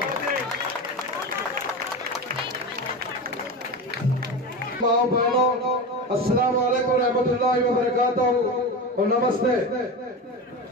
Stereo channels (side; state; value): both; normal; correlation 0.24